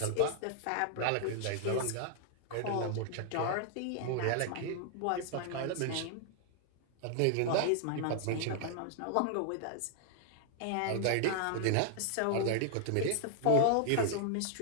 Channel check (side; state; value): both; different; correlation 0.00